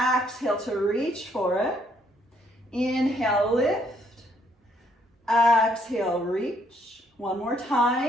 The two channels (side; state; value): both; normal; correlation 0.69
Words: to reach for it. Inhale, lift. Exhale, reach. 1 more